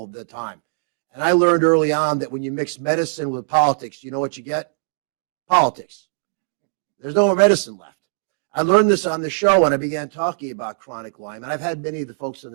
the time. And I learned early on that when you mix medicine with politics, you know what you get? Politics. There's no more medicine left. I learned this on the show when I began talking about chronic Lyme, and I've had many of the folks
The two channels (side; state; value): left; silent; digital silence